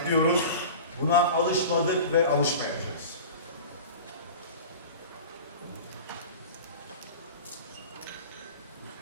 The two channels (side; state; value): both; inverted; correlation -0.35